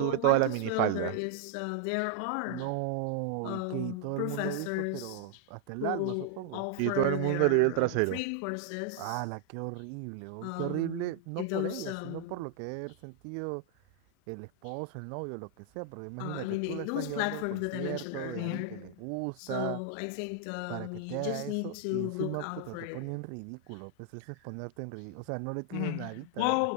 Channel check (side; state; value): both; different; correlation 0.00